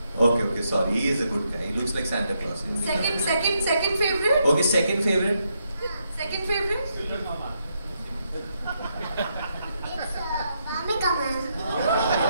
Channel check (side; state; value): both; inverted; correlation -0.79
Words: Okay, sorry. He is a good guy. He looks like Santa Claus. Second favorite? Okay, second favorite? Second favorite? It's Bhamika ma'am.